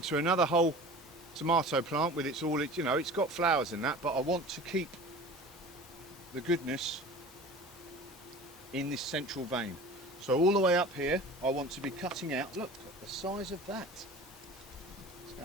another whole tomato plant with its all, you know, it's got flowers in that, but I want to keep the goodness in this central vein. So all the way up here I want to be cutting out. Look at the size of that. What's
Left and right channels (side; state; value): both; normal; correlation 0.39